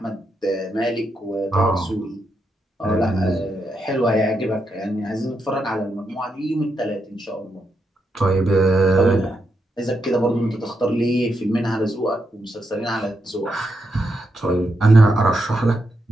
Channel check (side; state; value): both; normal; correlation 0.83